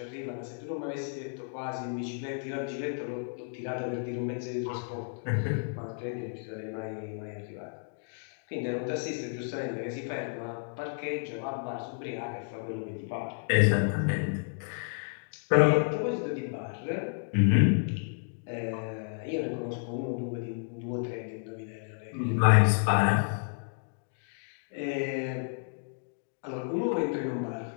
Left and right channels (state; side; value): silent; right; digital silence